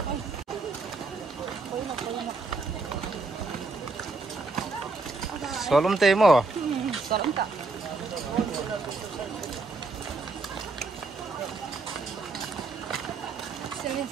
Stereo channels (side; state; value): left; quieter; 3.6 dB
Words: Solom tayo mo. Salam tak?